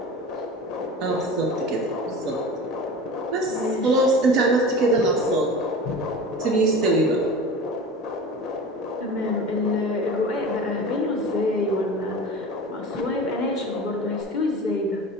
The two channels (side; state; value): both; normal; correlation 0.34